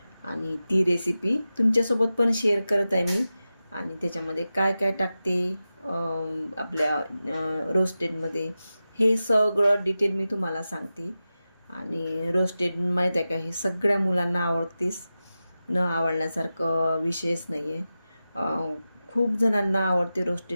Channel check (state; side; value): inverted; both; correlation -0.94